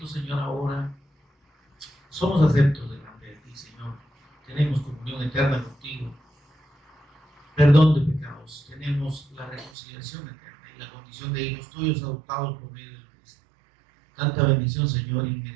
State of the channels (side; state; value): left; drops out; at 9.7 s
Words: Señor, ahora somos aceptos delante de ti, Señor. Tenemos comunión eterna contigo, perdón de pecados, tenemos la reconciliación eterna y la condición de hijos tuyos adoptados por medio de Cristo. Tanta bendición, Señor,